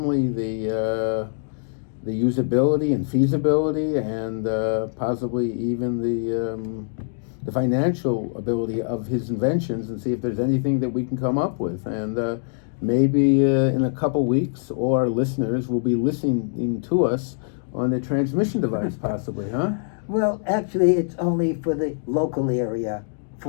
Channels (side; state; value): right; silent; digital silence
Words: the usability and feasibility and possibly even the financial ability of his inventions, and see if there's anything that we can come up with. And maybe in a couple weeks, all our listeners will be listening to us on the transmission device, possibly, huh? Well, actually, it's only for the local area,